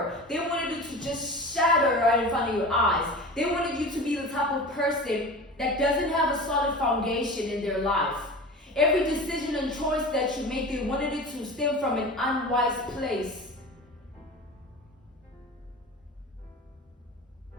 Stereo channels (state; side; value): normal; both; correlation 0.33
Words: They wanted it to just shatter right in front of your eyes. They wanted you to be the type of person that doesn't have a solid foundation in their life. Every decision and choice that you make, they wanted it to stem from an unwise place.